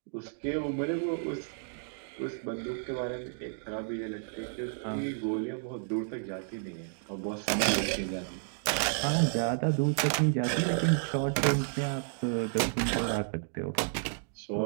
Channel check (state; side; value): silent; left; digital silence